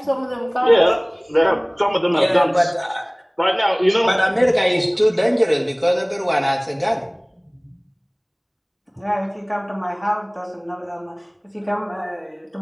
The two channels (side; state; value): both; identical; correlation 1.00